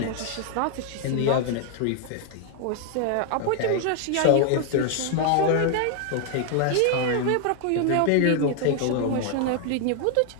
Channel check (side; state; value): both; different; correlation 0.00